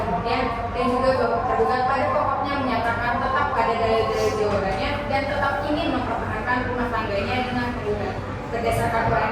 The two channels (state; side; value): identical; both; correlation 1.00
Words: dan juga bahwa tergugat pada pokoknya menyatakan tetap pada dalil-dalil jawabannya dan tetap ingin mempertahankan rumah tangganya dengan penggugat. Berdasarkan uraian